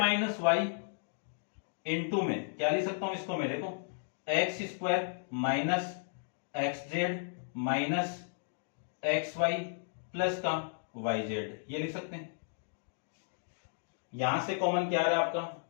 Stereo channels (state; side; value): silent; right; digital silence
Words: वाई इंटू में क्या लिख सकता हूं इसको, मेरे को x square minus x z minus x y plus का वाई जेड, ये लिख सकते हैं। यहां से कॉमन क्या आ रहा है